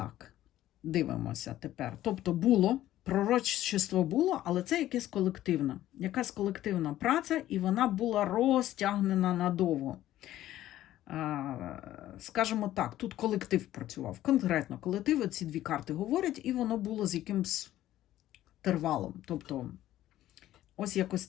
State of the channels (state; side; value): quieter; right; 13.7 dB